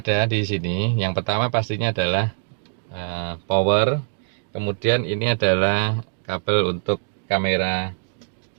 di sini, yang pertama pastinya adalah power. Kemudian ini adalah kabel untuk kamera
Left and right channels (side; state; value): left; silent; digital silence